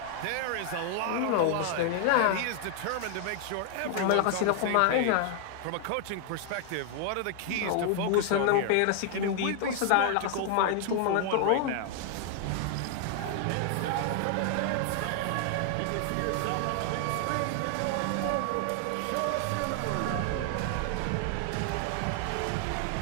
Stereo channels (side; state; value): both; different; correlation 0.00